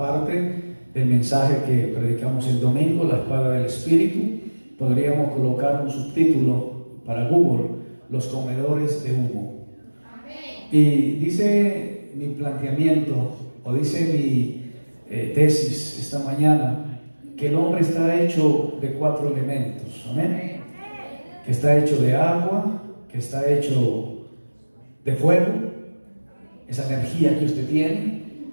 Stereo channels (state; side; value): inverted; both; correlation -1.00